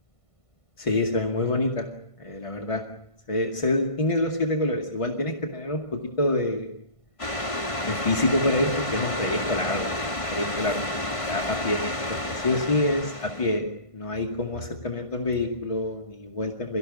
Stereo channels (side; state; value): right; late; 1.5 ms